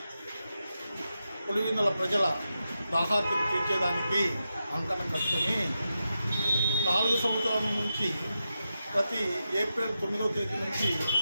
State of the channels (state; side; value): inverted; both; correlation -0.89